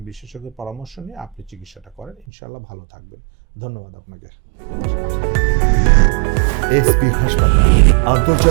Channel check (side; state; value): left; drops out; at 2.2 s